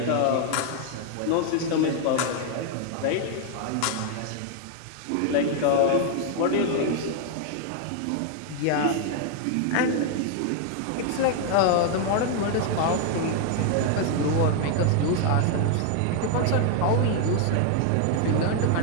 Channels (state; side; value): different; both; correlation 0.00